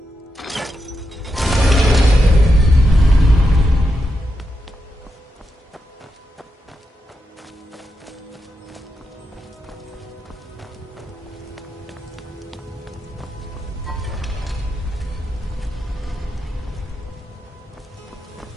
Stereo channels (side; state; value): both; normal; correlation 0.86